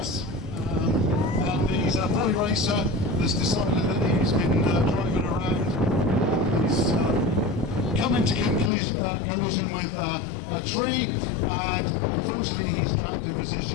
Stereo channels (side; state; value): right; drops out; at 8.7 s